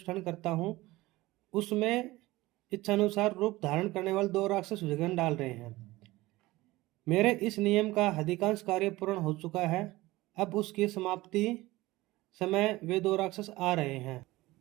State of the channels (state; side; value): quieter; left; 19.1 dB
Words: करता हूँ। उसमें इच्छानुसार रूप धारण करने वाले 2 राक्षस विघ्न डाल रहे हैं। मेरे इस नियम का अधिकांश कार्य पूर्ण हो चुका है। अब उसकी समाप्ति समय वे 2 राक्षस आ रहे हैं।